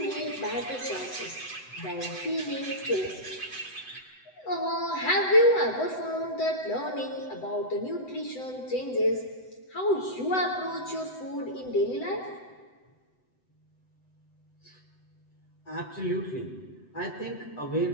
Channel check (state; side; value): late; right; 7.9 ms